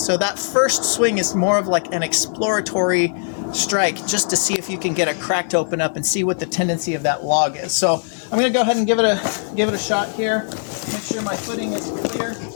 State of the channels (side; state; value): right; silent; 66 dB below the other